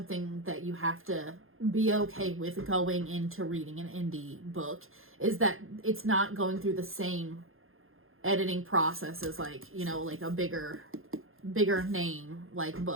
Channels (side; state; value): left; late; 0.60 ms